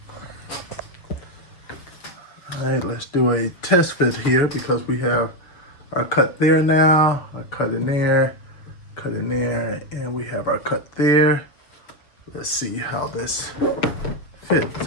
All right, let's do a test fit here because we have our cut there now, our cut in there, and we have our cut there. Let's see how this fits.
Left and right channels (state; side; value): late; right; 6.8 ms